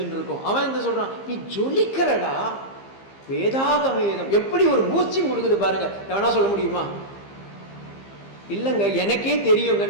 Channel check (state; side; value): late; right; 15 ms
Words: இருக்கோம். அவன் என்ன சொல்றான், நீ ஜொலிக்கிறடா. வேதாகவேதம் எப்படி ஒரு பூஸ்டிங் கொடுக்குது பாருங்க. எவனா சொல்ல முடியுமா? இல்லைங்க எனக்கே தெரியுங்க,